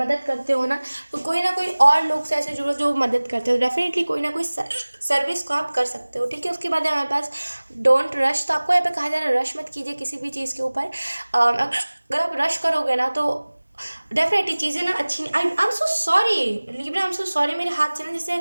करते हो ना तो कोई ना कोई और लोग से ऐसे जुड़ो जो मदद करते हो, डेफिनेटली कोई ना कोई सर्विस को आप कर सकते हो, ठीक है। उसके बाद है हमारे पास डोंट रश, तो आपको यहाँ पे कहा जा रहा है रश मत कीजिए किसी भी चीज़ के ऊपर। अगर आप रश करोगे ना तो डेफिनेटली चीज़ें ना अच्छी नहीं। आई am so sorry Libra, I am so sorry, मेरे हाथ से ना जैसे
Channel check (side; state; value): both; inverted; correlation -1.00